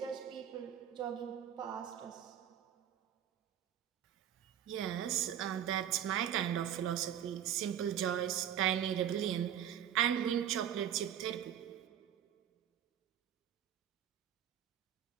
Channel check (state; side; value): quieter; left; 10.0 dB